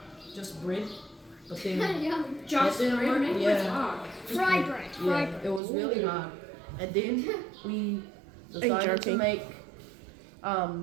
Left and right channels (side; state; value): left; drops out; at 5.6 s